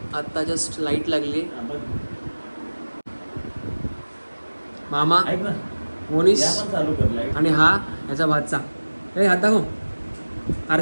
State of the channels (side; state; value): both; inverted; correlation -1.00